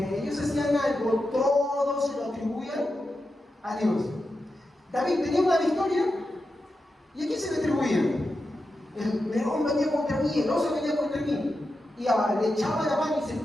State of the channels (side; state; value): both; normal; correlation 0.89